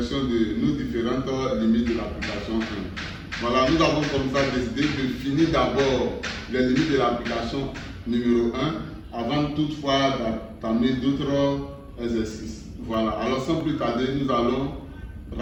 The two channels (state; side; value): identical; both; correlation 1.00